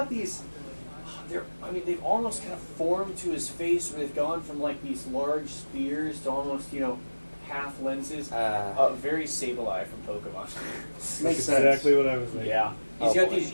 these. They've almost kind of formed to his face, where they've gone from like these large spears to almost, half lenses. Very Sableye from Pokemon. Makes Exactly what I was thinking. Yeah. He's Oh, got boy. these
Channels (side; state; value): both; inverted; correlation -1.00